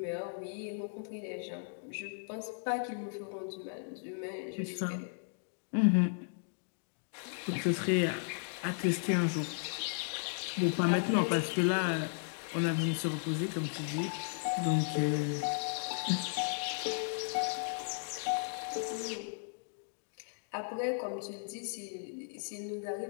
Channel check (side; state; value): right; silent; digital silence